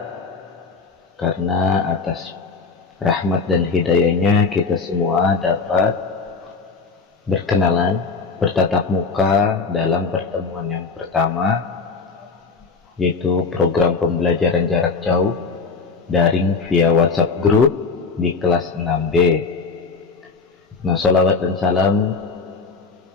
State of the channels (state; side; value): quieter; right; 4.6 dB